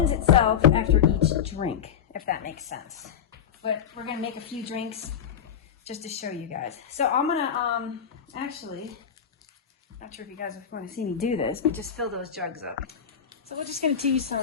itself after each drink, if that makes sense. But we're going to make a few drinks just to show you guys. So I'm going to actually, not sure if you guys want to see me do this, but just fill those jugs up. So we're just going to do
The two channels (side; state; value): right; quieter; 8.2 dB